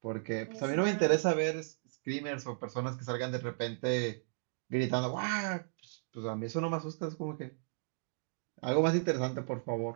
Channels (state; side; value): silent; left; digital silence